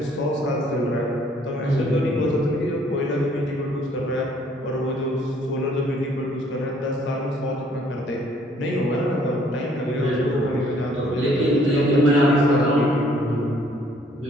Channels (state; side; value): normal; both; correlation 0.62